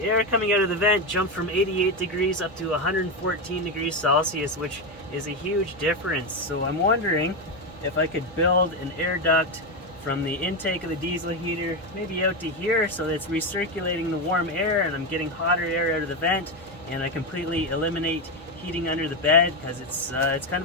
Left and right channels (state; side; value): noise; right; hum, 20 dB below the sound